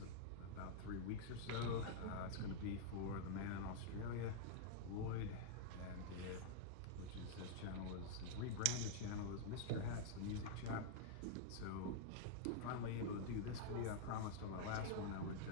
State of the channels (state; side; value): different; both; correlation -0.01